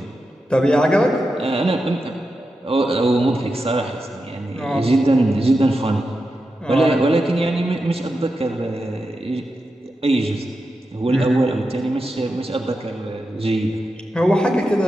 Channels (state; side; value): normal; both; correlation 0.89